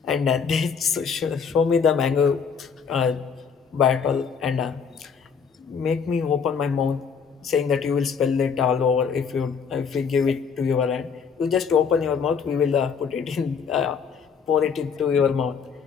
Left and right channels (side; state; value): right; quieter; 6.2 dB